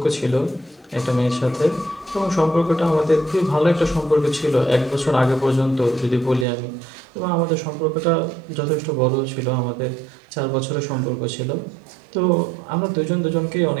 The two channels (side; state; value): left; drops out; at 6.5 s